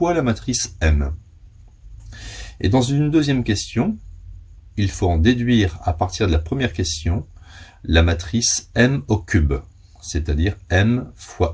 la matrice M. Et dans une deuxième question, il faut en déduire à partir de la première question la matrice M au cube, c'est-à-dire M fois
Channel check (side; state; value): both; identical; correlation 1.00